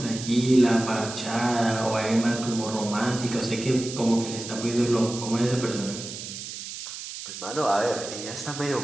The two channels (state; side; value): noise; right; hiss, 9 dB below the sound